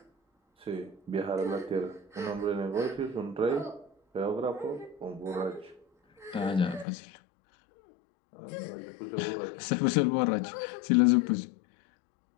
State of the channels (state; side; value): drops out; right; at 6.9 s